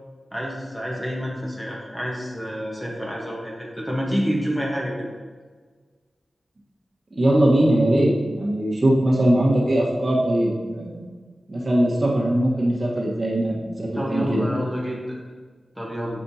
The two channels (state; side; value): normal; both; correlation 0.95